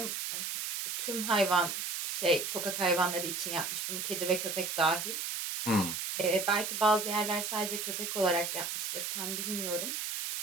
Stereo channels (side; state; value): right; noise; hiss, 3 dB below the sound